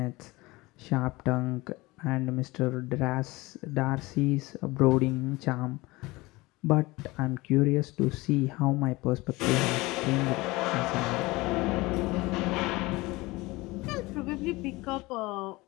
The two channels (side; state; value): right; quieter; 21.7 dB